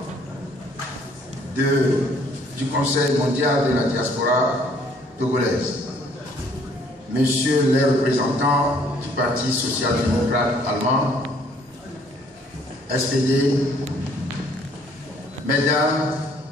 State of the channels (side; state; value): both; normal; correlation 0.61